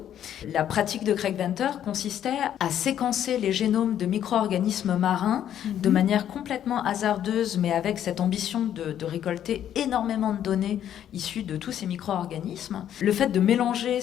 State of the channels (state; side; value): quieter; right; 10.4 dB